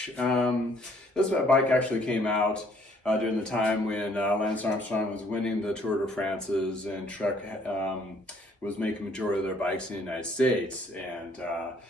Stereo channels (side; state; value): both; normal; correlation 0.63